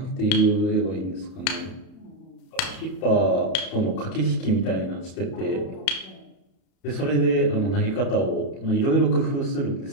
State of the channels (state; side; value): late; right; 31 ms